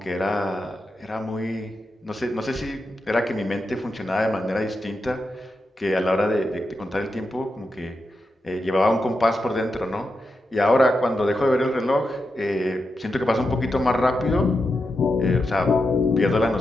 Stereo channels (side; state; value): both; normal; correlation 0.87